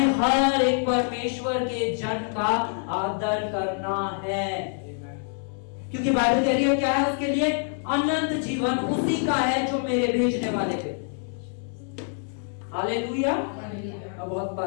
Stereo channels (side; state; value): right; silent; 59 dB below the other